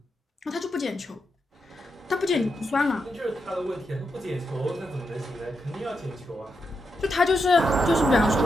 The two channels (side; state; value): both; normal; correlation 0.84